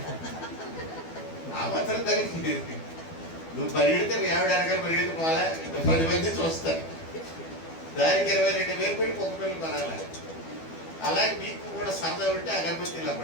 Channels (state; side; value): late; right; 12 ms